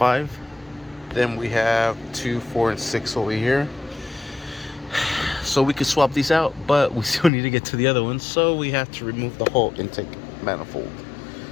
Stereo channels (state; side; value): drops out; right; at 7.3 s